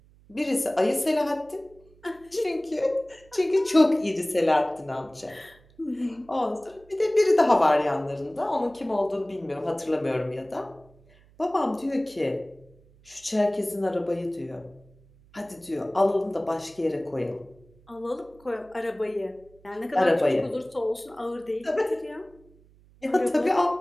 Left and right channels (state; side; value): noise; right; hum, 28 dB below the sound